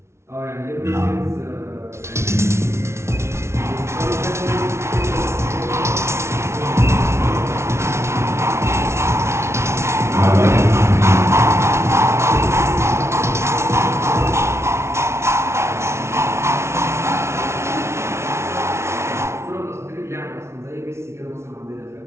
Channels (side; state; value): left; late; 0.13 ms